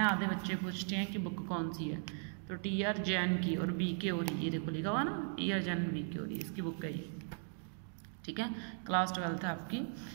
आधे बच्चे पूछते हैं कि बुक कौन सी है, तो टी.आर. जैन की और बी.के. और ये देखो लिखा हुआ ना, टी.आर. जैन बी.के. और इसकी बुक है ये, ठीक है। क्लास 12 है आपकी।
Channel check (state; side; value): silent; left; 52 dB below the other